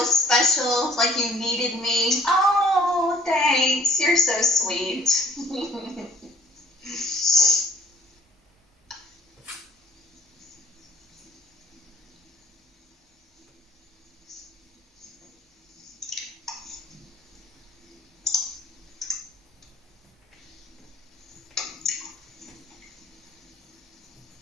special, like you needed me? Oh, thanks. You're so sweet.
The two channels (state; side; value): normal; both; correlation 0.56